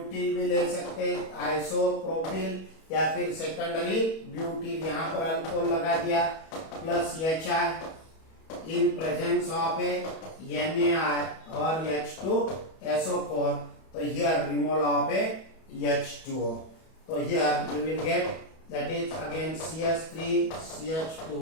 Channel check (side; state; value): right; late; 31 ms